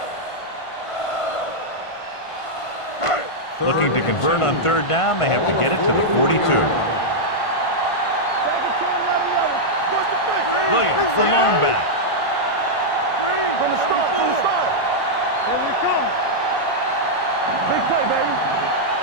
Looking to convert on third down, they have to get it to the 42. Williams, the lone back. Green, from the start. Here we come. Big play, baby.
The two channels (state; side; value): late; right; 1.5 ms